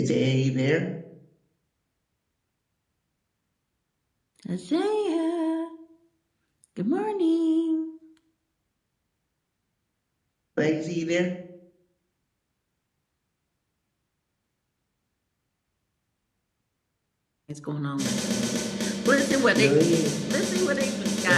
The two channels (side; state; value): both; identical; correlation 1.00